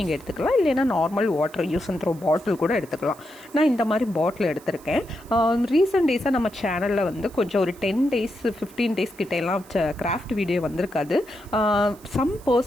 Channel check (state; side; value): noise; right; hiss, 24 dB below the sound